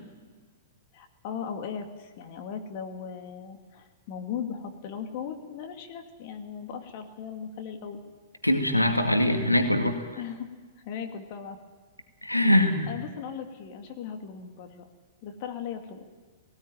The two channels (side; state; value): both; inverted; correlation -0.72